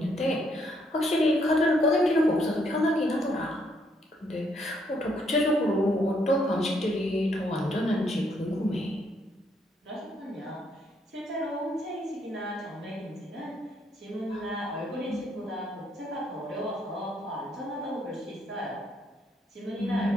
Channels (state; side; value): normal; both; correlation 0.72